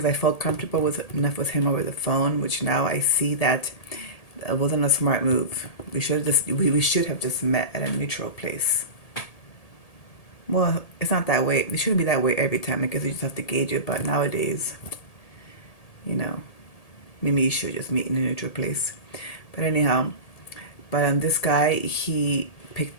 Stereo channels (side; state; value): right; late; 1.8 ms